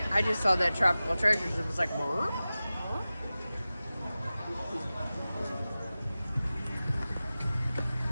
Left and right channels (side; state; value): both; inverted; correlation -0.96